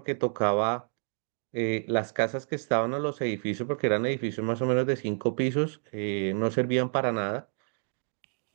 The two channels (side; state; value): left; silent; 59 dB below the other